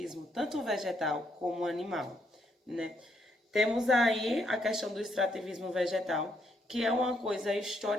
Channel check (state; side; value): normal; both; correlation 0.74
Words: tanto vegetal como animal, né? Temos aí a questão do extrativismo vegetal, que é uma coisa